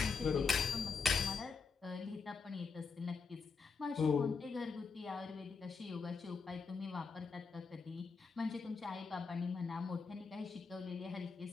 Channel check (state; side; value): quieter; right; 5.1 dB